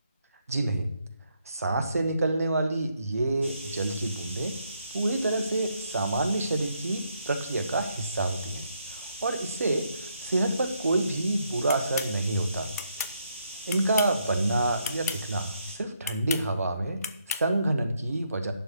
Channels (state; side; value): inverted; both; correlation -0.76